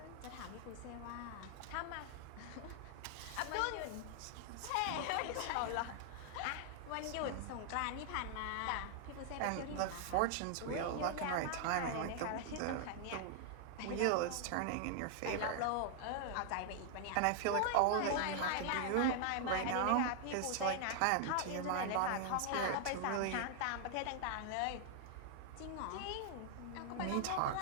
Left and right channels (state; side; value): different; both; correlation 0.00